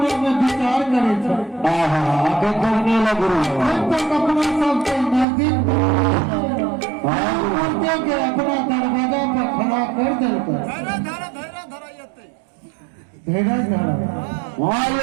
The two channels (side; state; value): left; drops out; at 5.2 s